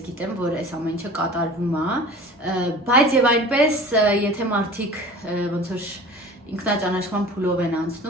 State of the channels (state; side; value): normal; both; correlation 0.41